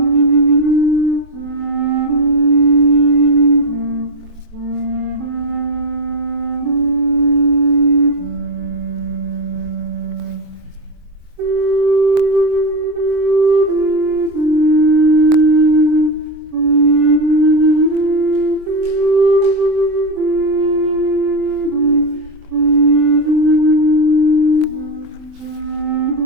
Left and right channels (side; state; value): left; late; 23 ms